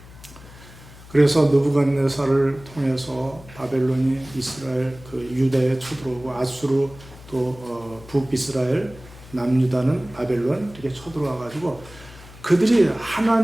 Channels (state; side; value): noise; left; hum, 20 dB below the sound